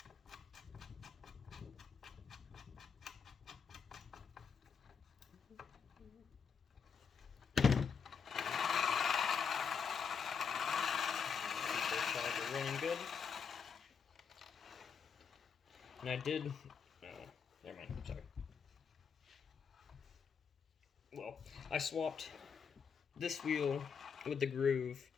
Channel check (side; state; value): right; quieter; 6.4 dB